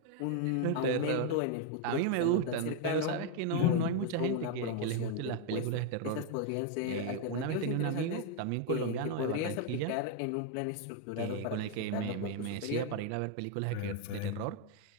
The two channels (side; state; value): both; different; correlation 0.01